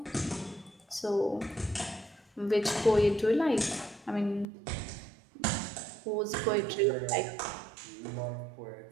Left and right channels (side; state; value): left; drops out; at 4.5 s